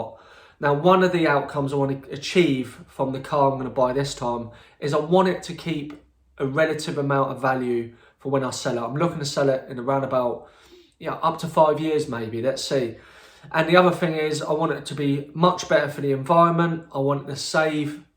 Now, one of the outcomes I want to achieve from the car I'm going to buy this time is I want it to keep a relative amount of value for when I sell it. I'm looking to sell it in around about, up to 5 years maybe, let's see. And the other thing is I want it to be much better for the environment. I want it to save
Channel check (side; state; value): both; identical; correlation 1.00